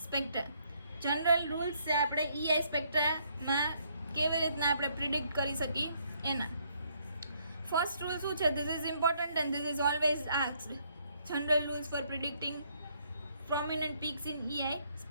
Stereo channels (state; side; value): inverted; both; correlation -0.70